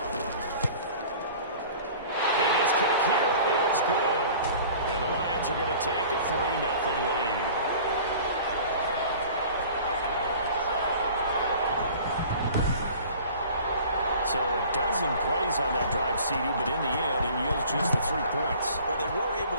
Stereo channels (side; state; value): both; inverted; correlation -0.45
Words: And his kick here is good. And the Lions are going to take a 3-0 lead. So a dozen plays on that drive, CD, but in the end, it yields just the 3 points. Well, they were able